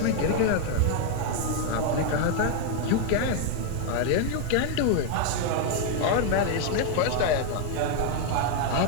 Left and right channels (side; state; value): both; different; correlation 0.00